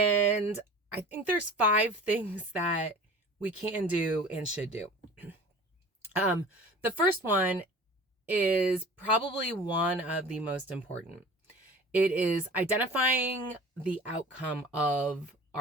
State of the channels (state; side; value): normal; both; correlation 0.41